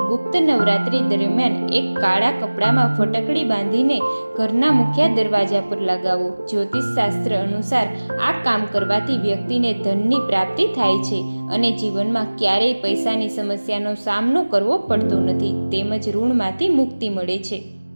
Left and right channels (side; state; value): both; inverted; correlation -1.00